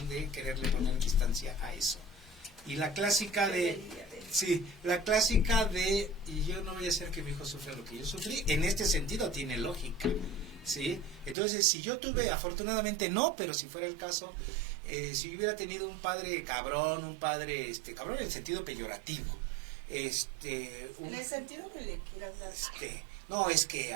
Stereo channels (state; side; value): drops out; left; at 11.4 s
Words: de quererle poner distancia a eso. Y la clásica de... Sí, la clásica de, y yo no voy a hacer que mi hijo sufra lo que yo sufrí, en este sentido tiene lógica, ¿sí? Entonces, si yo tuve, afortunadamente no, pero si fuera el caso, si yo hubiera tenido un padre cabrón, cabrón en el sentido peyorativo, En el sentido que le quieras dar. No, es que